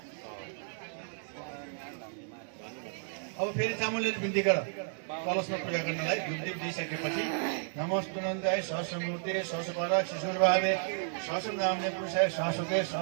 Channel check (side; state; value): left; silent; digital silence